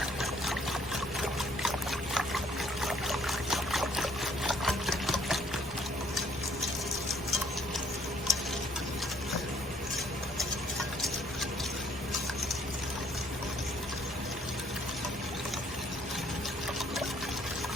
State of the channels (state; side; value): noise; right; hum, 21 dB below the sound